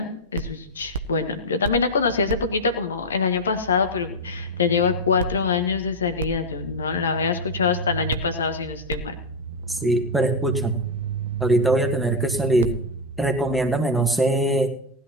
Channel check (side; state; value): both; normal; correlation 0.03